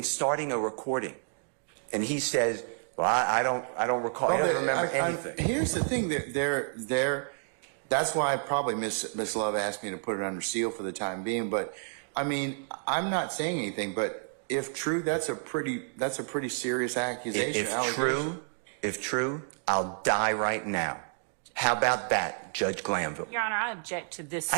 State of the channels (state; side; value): silent; left; digital silence